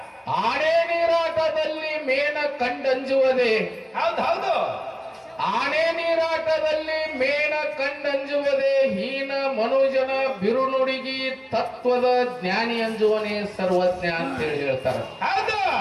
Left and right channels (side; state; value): both; identical; correlation 1.00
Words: ಆನೆ ನೀರಾಟದಲ್ಲಿ ಮೇನ ಕಂಡಂಜುವುದೇ. ಹೌದು, ಆನೆ ನೀರಾಟದಲ್ಲಿ ಮೇನ ಕಂಡಂಜುವುದೇ. ಹೀನ ಮನುಜನ ಬಿರುನುಡಿಗಿ ತತ್ವದ ಜ್ಞಾನಿ ಅಂಜುವನೇ ಸರ್ವಜ್ಞ ಅಂತೇಳಿ ಹೇಳ್ತಾರ. ಹೌದು,